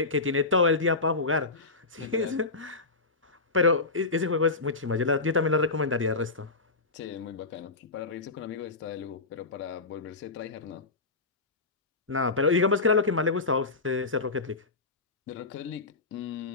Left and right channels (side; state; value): right; quieter; 3.7 dB